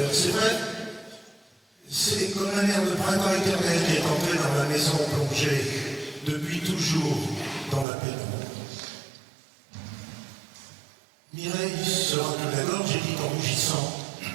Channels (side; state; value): left; drops out; at 7.9 s